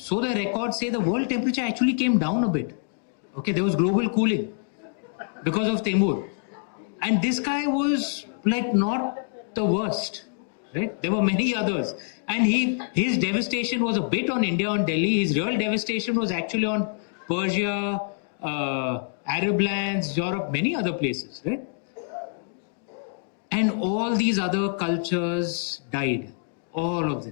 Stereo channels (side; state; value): right; silent; 61 dB below the other